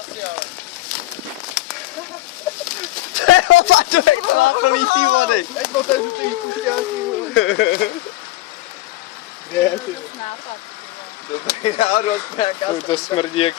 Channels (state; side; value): quieter; right; 17.5 dB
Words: Plný tý vody. Jak to tady ty pušťáky. Kde je ty? Dobrý náhodou, aspoň nějaká Uj, to smrdí